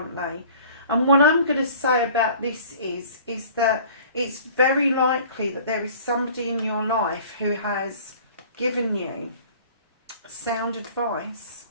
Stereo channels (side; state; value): both; inverted; correlation -0.47